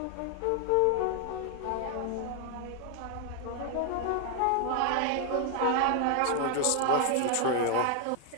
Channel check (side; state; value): both; different; correlation 0.00